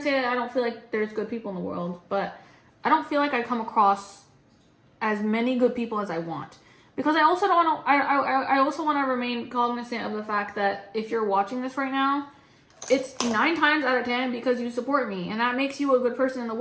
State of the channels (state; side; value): identical; both; correlation 1.00